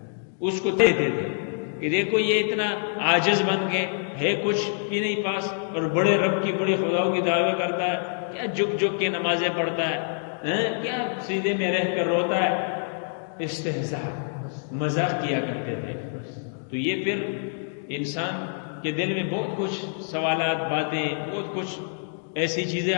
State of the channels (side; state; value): right; silent; digital silence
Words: اس کو دیتے تھے کہ دیکھو یہ اتنا عاجز بن کے ہے کچھ بھی نہیں پاس، اور بڑے رب کی بڑی خداؤں کی دعوے کرتا ہے، کیا جھک جھک کے نمازیں پڑھتا ہے، کیا سیدھے میں رہ کر روتا ہے۔ استہزاء، مذاق کیا کرتے تھے۔ تو یہ پھر انسان کے دل میں بہت کچھ سوالات، باتیں، بہت کچھ ایسی چیزیں